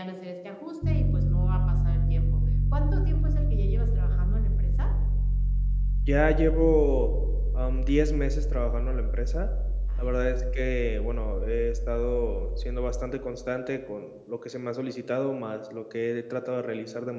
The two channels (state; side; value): identical; both; correlation 1.00